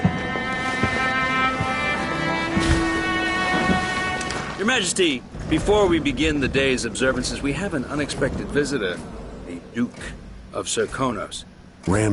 Your Majesty, before we begin the day's observances, we have an unexpected visitor, the Duke of Serkonos.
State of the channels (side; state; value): both; identical; correlation 1.00